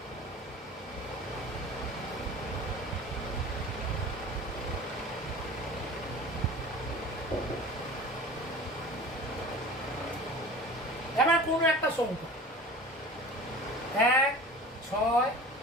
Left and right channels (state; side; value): normal; both; correlation 0.39